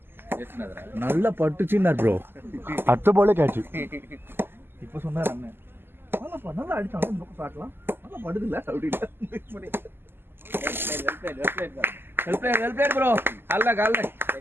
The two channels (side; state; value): left; late; 0.11 ms